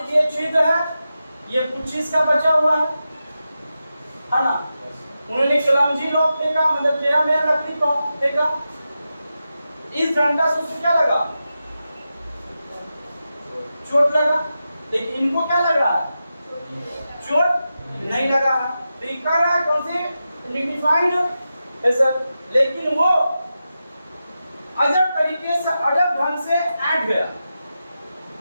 छिद्र है, ये पुच्छिस का बचा हुआ है ना। उन्होंने क्लमजी लॉक फेंका, मतलब टेढ़ा मेढ़ा लकड़ी को फेंका। इस डंडा से उसको क्या लगा, चोट लगा, लेकिन इनको क्या लग रहा है, चोट नहीं लगा है। तो ये कर रहा है कौन से डिफाइंड हैसल, लेकिन वो अजब तरीके से, अजब ढंग से ऐड गया।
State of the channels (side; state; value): both; inverted; correlation -0.91